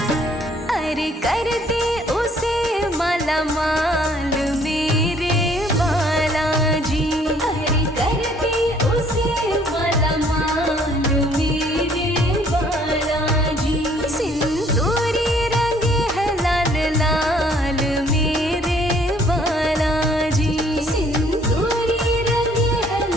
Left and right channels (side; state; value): both; normal; correlation 0.61